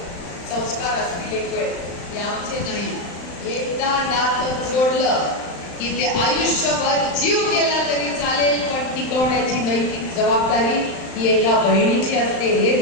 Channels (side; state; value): right; late; 35 ms